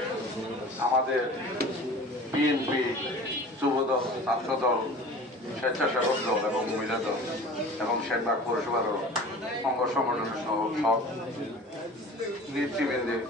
আমাদের বিএনপি যুবদল, ছাত্রদল, স্বেচ্ছাসেবক দল এবং মহিলা দল এবং সেনবাগ পৌরসভারও অঙ্গ সংগঠনের সব নেতৃবৃন্দের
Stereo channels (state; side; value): normal; both; correlation 0.41